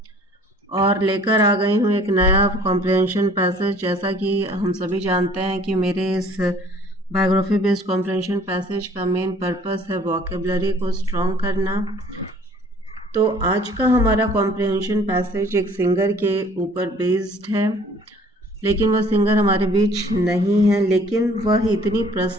और लेकर आ गई हूं एक नया कॉम्प्रिहेंशन पैसेज। जैसा कि हम सभी जानते हैं कि मेरे इस बायोग्राफी बेस्ड कॉम्प्रिहेंशन पैसेज का मेन पर्पस है वोकेबलरी को स्ट्रॉन्ग करना। तो आज का हमारा कॉम्प्रिहेंशन पैसेज एक सिंगर के ऊपर बेस्ड है, लेकिन वह सिंगर हमारे बीच नहीं है, लेकिन वह इतनी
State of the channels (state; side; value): normal; both; correlation 0.54